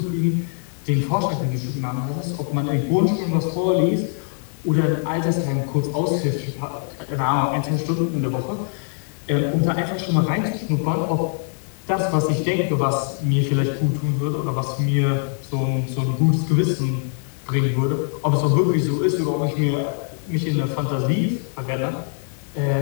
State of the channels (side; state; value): right; silent; 59 dB below the other